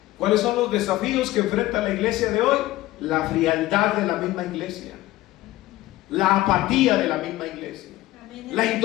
¿Cuáles son los desafíos que enfrenta la iglesia de hoy? La frialdad de la misma iglesia, la apatía de la misma iglesia, la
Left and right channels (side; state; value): right; quieter; 16.7 dB